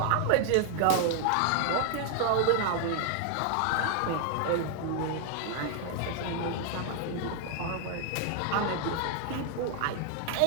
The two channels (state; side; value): different; both; correlation 0.00